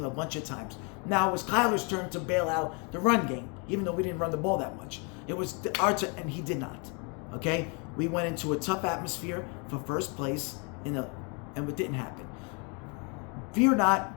a bunch of times. Now it was Kyler's turn to bail out the run game, even though we didn't run the ball that much. It was our turn, and he did not. Okay? We went into a tough atmosphere for first place and it didn't happen. Fear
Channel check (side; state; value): right; quieter; 34.1 dB